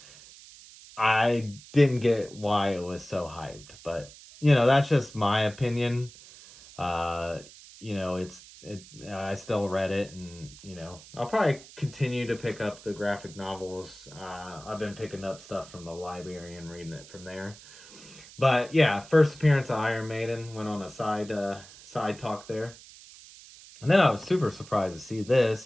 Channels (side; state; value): right; noise; hiss, 19 dB below the sound